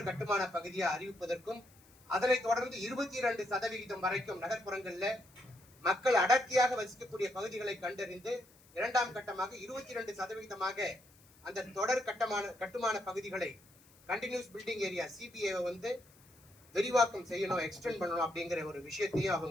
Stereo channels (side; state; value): left; noise; hiss, 27 dB below the sound